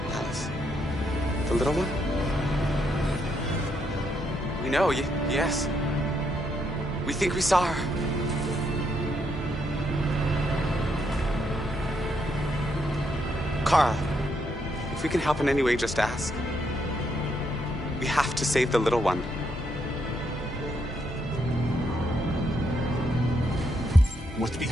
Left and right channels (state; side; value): normal; both; correlation 0.76